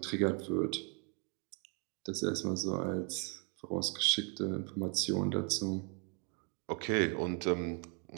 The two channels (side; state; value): left; quieter; 36.4 dB